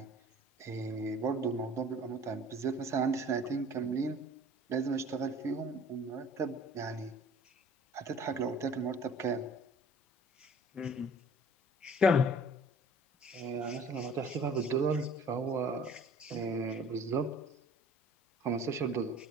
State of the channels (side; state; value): both; normal; correlation 0.50